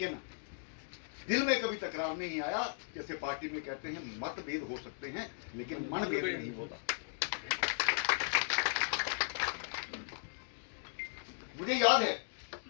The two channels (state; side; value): silent; right; digital silence